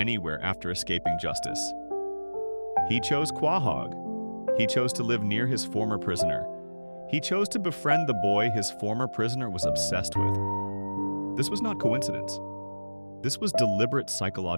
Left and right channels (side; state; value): both; inverted; correlation -1.00